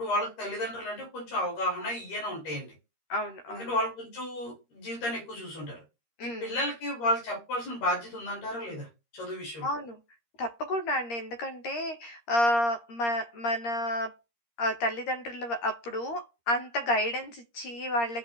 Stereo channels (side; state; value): right; late; 13 ms